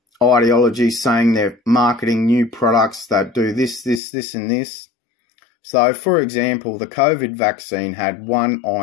ideologies, saying they're marketing new products that do this, and this. So, for example, the COVID vaccine had 1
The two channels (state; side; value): drops out; right; at 4.0 s